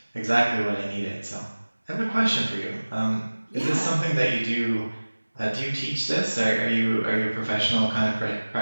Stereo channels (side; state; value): both; inverted; correlation -1.00